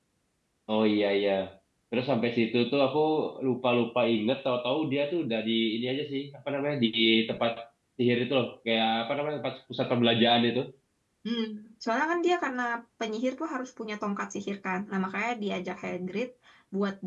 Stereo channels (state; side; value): identical; both; correlation 1.00